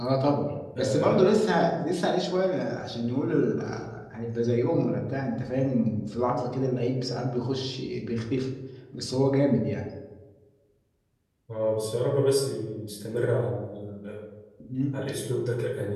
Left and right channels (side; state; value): both; identical; correlation 1.00